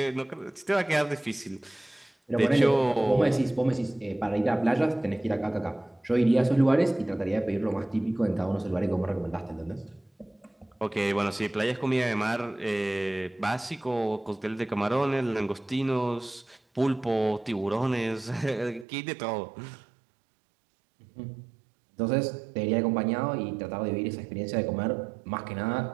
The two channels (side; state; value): left; drops out; at 18.9 s